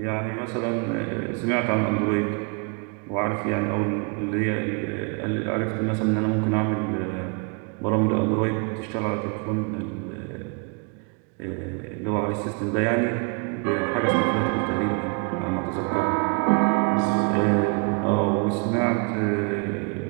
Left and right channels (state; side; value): quieter; left; 35.6 dB